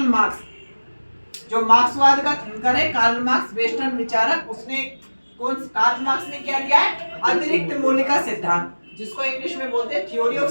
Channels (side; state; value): both; inverted; correlation -1.00